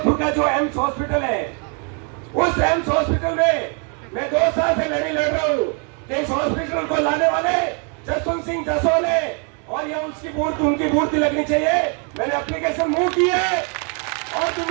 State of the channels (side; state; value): left; quieter; 38.0 dB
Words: का जो एम्स हॉस्पिटल है, उस एम्स हॉस्पिटल में मैं 2 साल से लड़ाई लड़ रहा हूं। इस हॉस्पिटल को लाने वाले जसवंत सिंह जसोल है और यह उसकी उनकी मूर्ति लगनी चाहिए। मैंने एप्लीकेशन मूव की है और